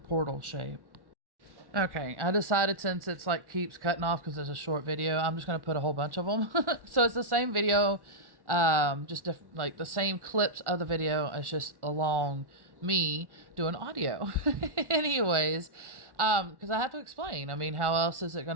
portal shape. Okay, I decided, since it's like keeps cutting off because it's a short video, I'm just going to put a whole bunch of them. So it's the same video, just like the same clips of the video. It's just along me doing audio. Anyways, because I have to explain. I mean, how else is it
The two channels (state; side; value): late; left; 1.1 ms